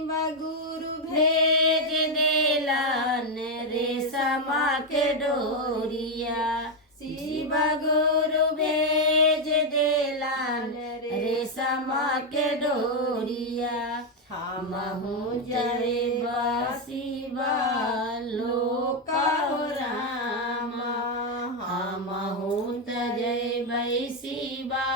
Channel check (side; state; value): both; normal; correlation 0.04